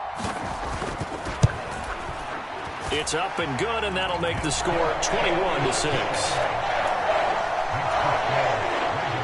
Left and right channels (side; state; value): both; identical; correlation 1.00